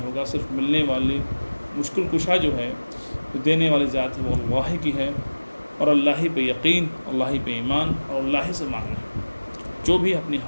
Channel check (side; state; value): both; inverted; correlation -1.00